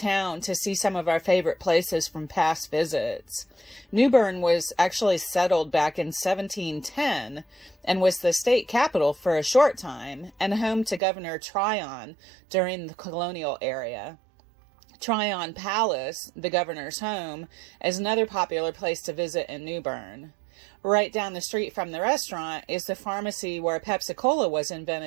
to see some of our favorite places from past visits. New Bern was actually settled back in 1710 and was the state capital for a short time and home to Governor Tryon during the colonial era. Tryon Palace, the governor's home, is another popular place to visit in New Bern. Right down the street from the restaurant is the pharmacy where Pepsi-Cola was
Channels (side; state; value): left; drops out; at 11.0 s